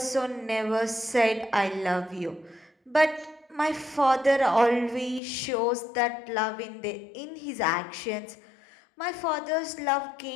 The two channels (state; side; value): drops out; right; at 5.2 s